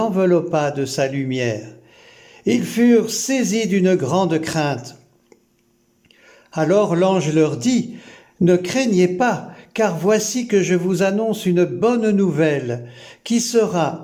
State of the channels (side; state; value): both; identical; correlation 1.00